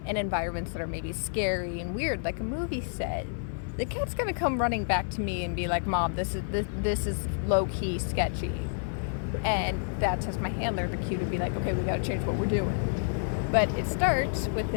in environments that are maybe scary and weird, like a movie set, the cat's going to come running back to me and be like, Mom, this is low-key sketchy. And that tells my handler the cue to be like, okay, we got to change what we're doing. But it starts with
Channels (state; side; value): silent; right; 56 dB below the other